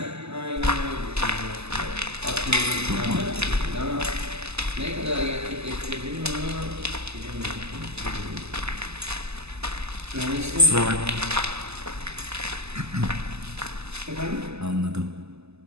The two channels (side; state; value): left; late; 0.79 ms